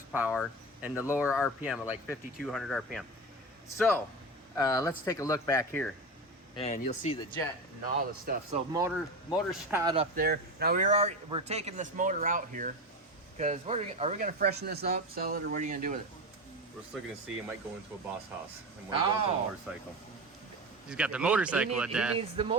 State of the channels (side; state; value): both; normal; correlation 0.23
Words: and the lower RPM of like 5,200 RPM. So let's take a look back here, and you'll see the jet and all the stuff. So motor shot up there. Now we're taking this motor out here because are we going to freshen this up, sell it, or what are you going to do with it? We're still going to see. It might go into a boss house and might go into a motorcycle. He's got the motorcycle at that. He needs the